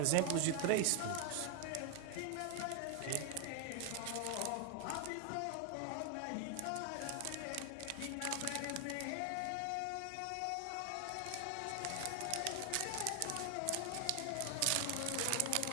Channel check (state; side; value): different; both; correlation 0.00